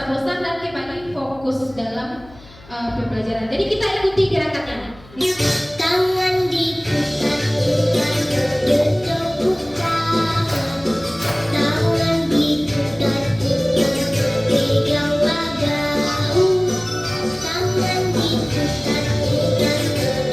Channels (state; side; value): noise; left; hum, 23 dB below the sound